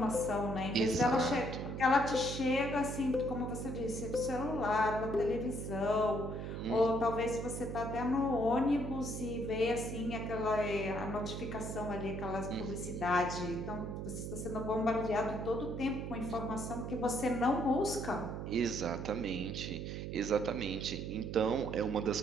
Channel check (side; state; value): right; noise; hum, 5 dB below the sound